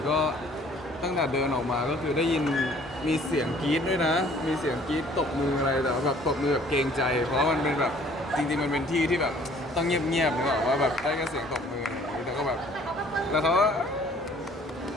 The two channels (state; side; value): normal; both; correlation 0.56